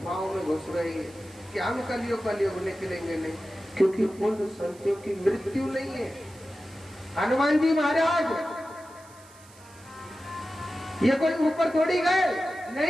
में घुस रहे हैं कि हम कलयुग निकलेंगे नहीं, क्योंकि उन संतों की मृत्यु नहीं है। हनुमान जी महाराज ये कोई ऊपर थोड़ी गए,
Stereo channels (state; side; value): noise; right; hiss, 25 dB below the sound